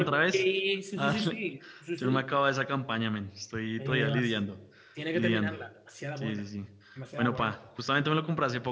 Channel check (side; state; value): both; identical; correlation 1.00